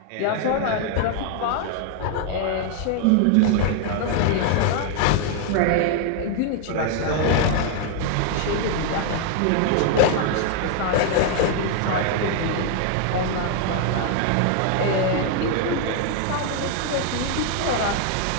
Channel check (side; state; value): both; different; correlation 0.00